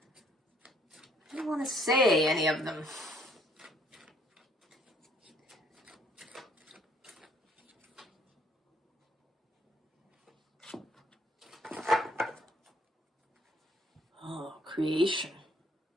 didn't want to say any of them. Creation.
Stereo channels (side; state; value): both; normal; correlation 0.64